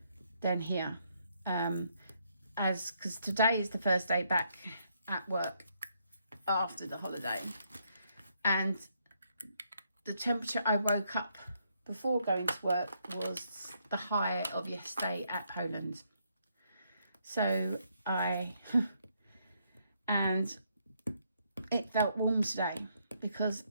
than here, because today is the first day back at work after the holiday, and the temperature I woke up before going to work was the high of yesterday at Poland. So and it felt warm today because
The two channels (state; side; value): inverted; both; correlation -0.74